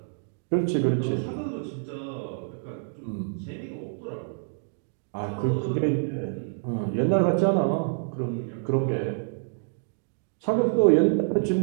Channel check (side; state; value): left; silent; digital silence